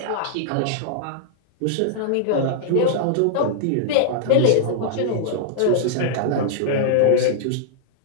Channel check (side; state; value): both; different; correlation -0.01